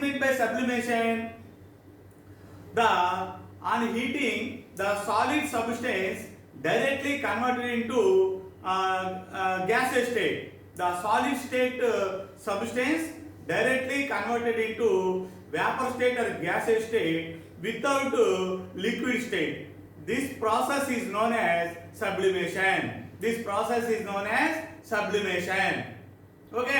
meant by sublimation? On heating, the solid substance directly converted into gaseous state. The solid state substance directly converted into vapor state or gaseous state without liquid state. This process is known as sublimation.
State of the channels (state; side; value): identical; both; correlation 1.00